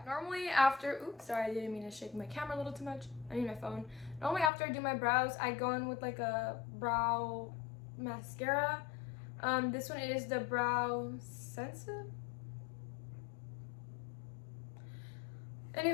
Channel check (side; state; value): right; drops out; at 4.5 s